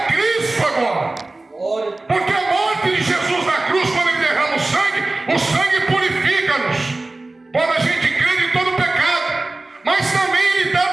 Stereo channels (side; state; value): left; quieter; 3.0 dB